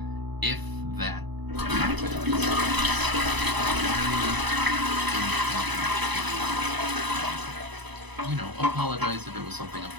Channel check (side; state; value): left; late; 1.0 ms